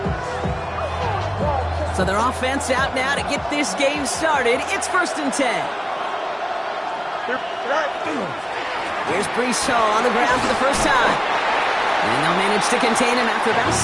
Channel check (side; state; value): both; identical; correlation 1.00